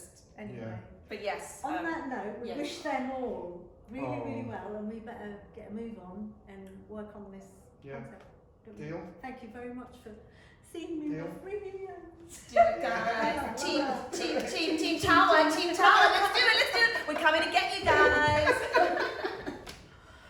Anyway, Yeah. but yes. on that note, we yes. wish them all really, really Oh. well, and we better get a move on and work on this Yeah. concept. don't we? Deal. Thank you very much for seeing me Deal. with brilliant. Do it, guys. Team Tower, Team Tower. Let's do it. We're coming to get you guys.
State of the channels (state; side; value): identical; both; correlation 1.00